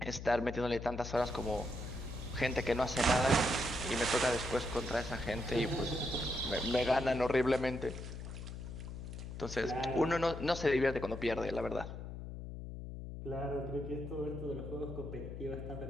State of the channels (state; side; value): noise; left; hum, 8 dB below the sound